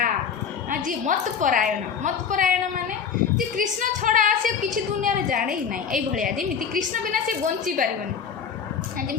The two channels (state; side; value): quieter; right; 7.0 dB